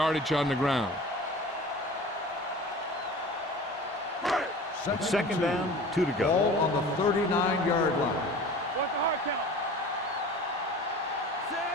on the ground. Second down, 2 to go. Ball on the 39-yard line. What's the hard count?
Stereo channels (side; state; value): both; normal; correlation 0.40